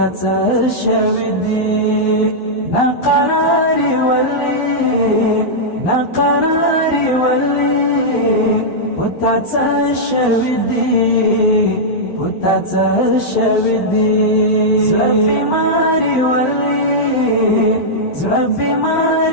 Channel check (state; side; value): late; right; 11 ms